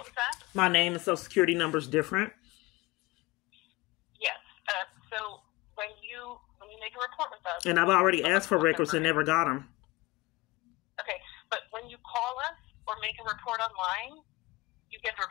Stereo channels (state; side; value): quieter; right; 22.0 dB